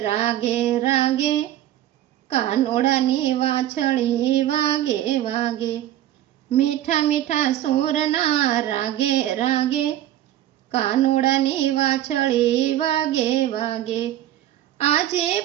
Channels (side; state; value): left; quieter; 12.9 dB